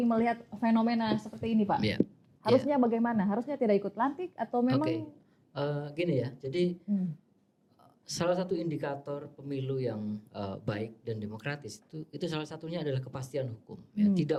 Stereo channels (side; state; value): both; identical; correlation 1.00